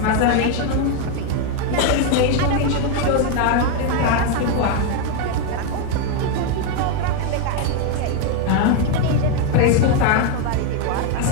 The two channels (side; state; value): both; different; correlation 0.01